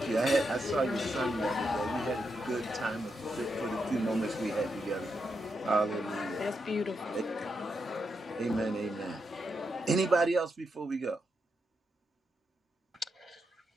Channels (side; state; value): both; normal; correlation 0.83